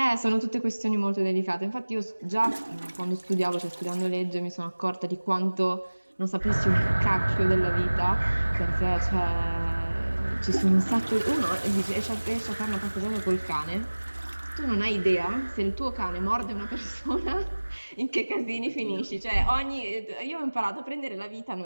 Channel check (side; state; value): both; inverted; correlation -1.00